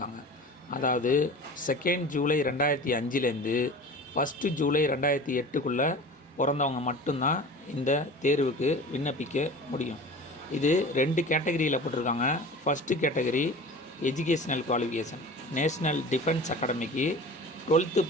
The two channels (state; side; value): normal; both; correlation 0.37